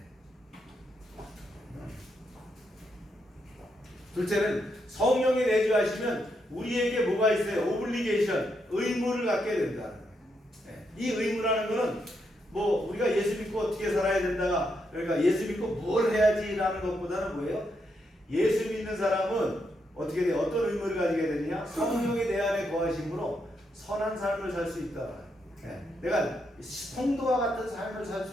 둘째는 성령이 내주하시면 우리에게 뭐가 있어요? 오블리게이션, 의무를 갖게 된다. 이 의무라는 것은 뭐 우리가 예수 믿고 어떻게 살아야 된다. 그러니까 예수 믿고 뭘 해야지라는 것보다는 뭐예요? 예수 믿는 사람은 어떻게 돼요? 어떤 의무를 가지게 되느냐? 성령이 내 안에 거하심으로 선한 삶을 살 수 있다. 내가 성도와 같은 삶을 살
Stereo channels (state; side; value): normal; both; correlation 0.80